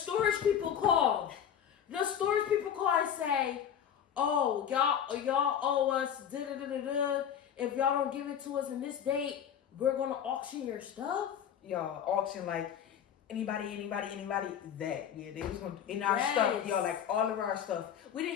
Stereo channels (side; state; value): right; quieter; 8.9 dB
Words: people call. The storage people call and say, "Oh, y'all owe us da-da-da-da-da. If y'all don't give it to us in this date, we're gonna auction your stuff." Y'all auction like anybody that. Yeah, they was gonna in our stuff, y'all, like all of our stuff. We